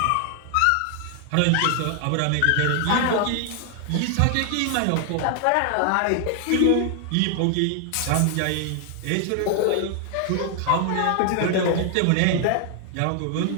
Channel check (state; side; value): different; both; correlation 0.00